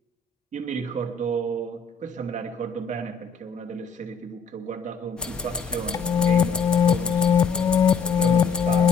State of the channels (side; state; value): right; quieter; 5.3 dB